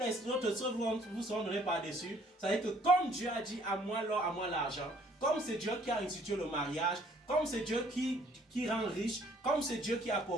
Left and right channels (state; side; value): normal; both; correlation 0.60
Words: autres choses vous seront données par-dessus, ça veut dire que comme Dieu a dit à moi l'or, à moi l'argent, comme c'est Dieu qui a institué le mariage, comme c'est Dieu qui rend riche, comme c'est Dieu qui